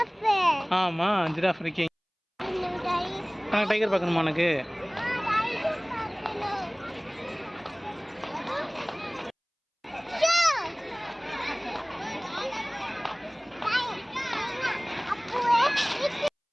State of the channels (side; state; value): both; identical; correlation 1.00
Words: ஆமா ஜிராஃப் இருக்கீங்க. டைகர் பார்க்கணுமா உனக்கு?